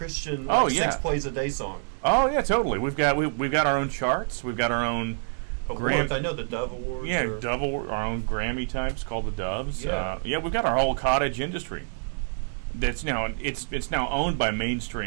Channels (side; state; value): left; silent; digital silence